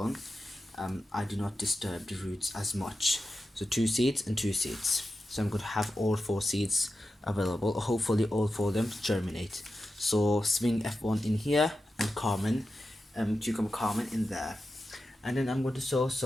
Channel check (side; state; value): both; normal; correlation 0.91